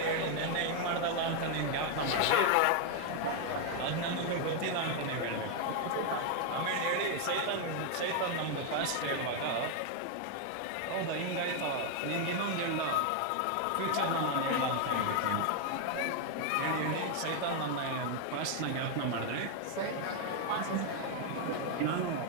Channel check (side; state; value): both; different; correlation 0.01